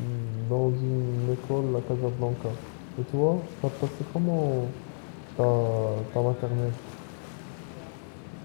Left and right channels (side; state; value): right; silent; digital silence